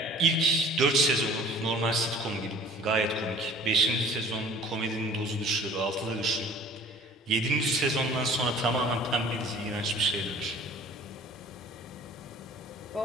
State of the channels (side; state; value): both; normal; correlation 0.48